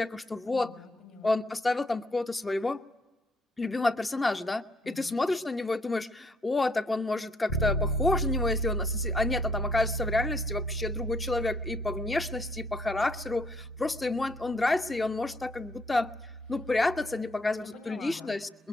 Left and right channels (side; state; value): both; normal; correlation 0.69